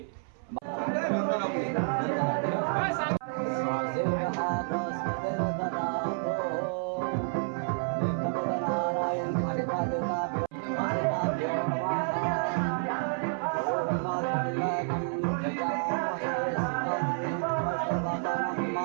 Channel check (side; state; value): left; silent; 58 dB below the other